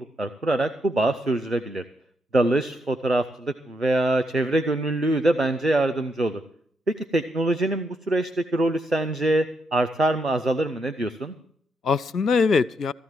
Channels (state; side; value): normal; both; correlation 0.78